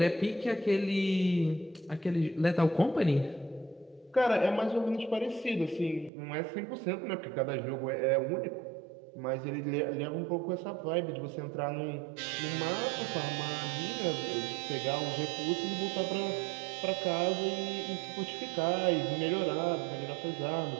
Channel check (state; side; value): drops out; left; at 6.1 s